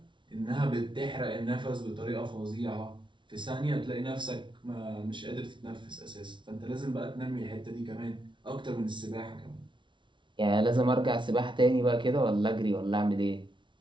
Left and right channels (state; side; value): late; left; 0.24 ms